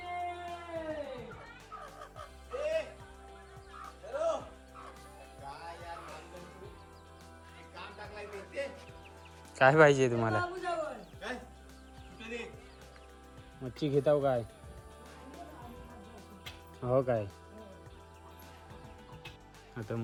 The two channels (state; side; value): identical; both; correlation 1.00